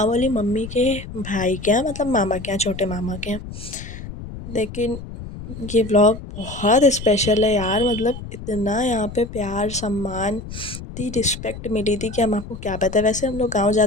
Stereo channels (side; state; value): left; noise; rumble, 11 dB below the sound